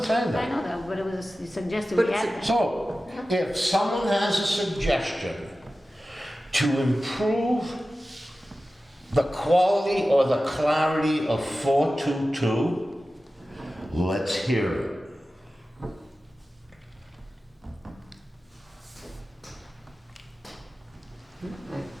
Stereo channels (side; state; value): both; normal; correlation 0.95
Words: say I that. know that, but it was suggested But we it's add that. So, if someone has a suggestion to improve the quality or the clarity of 422, let's hear it.